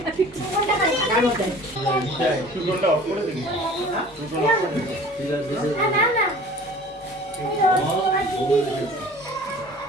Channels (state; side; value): normal; both; correlation 0.45